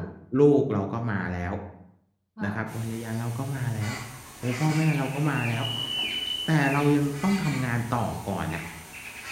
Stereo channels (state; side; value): identical; both; correlation 1.00